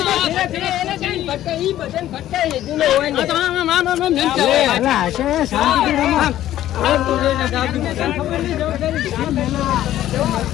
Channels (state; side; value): quieter; right; 13.1 dB